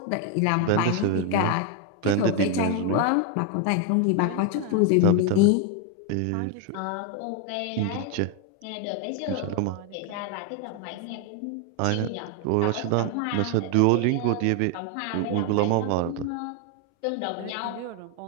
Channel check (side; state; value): both; different; correlation 0.01